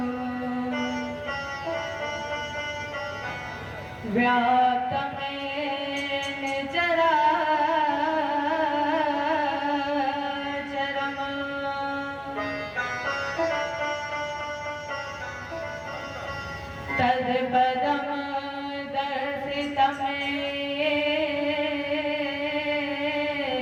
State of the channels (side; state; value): both; identical; correlation 1.00